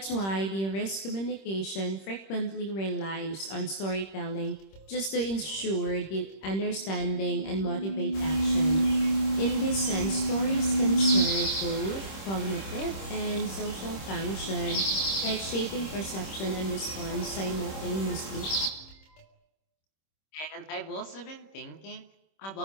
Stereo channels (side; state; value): right; late; 26 ms